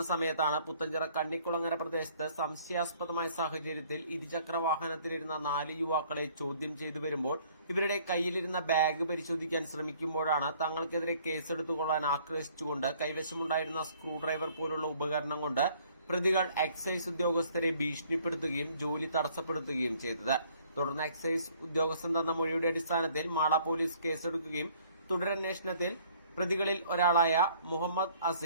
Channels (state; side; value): inverted; both; correlation -0.59